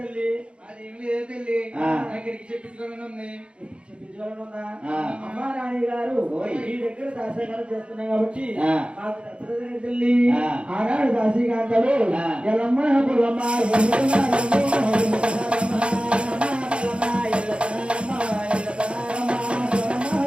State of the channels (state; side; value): late; left; 0.058 ms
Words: అదేమి లేదు తల్లి నాకు ఎరికి చెప్పించుకోవాలని ఉంది. చెప్పించుకోవాలని ఉందా? అమ్మా నాని గారు ఈ దగ్గర దాసీకారం చేస్తున్నాం కాబట్టి మాకు నచ్చలేదు తల్లి. ఆనాడు దాసీకాంతలు ఎలమ్మ పుల్లమ్మ